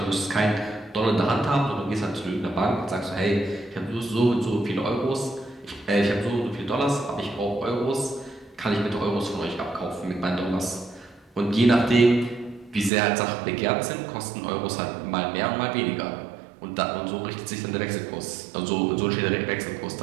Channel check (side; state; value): left; drops out; at 12.9 s